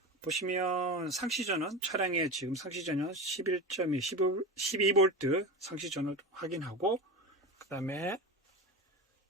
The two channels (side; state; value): both; normal; correlation 0.25